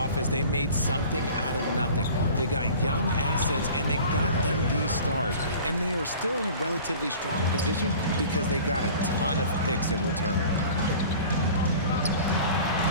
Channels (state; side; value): inverted; both; correlation -0.43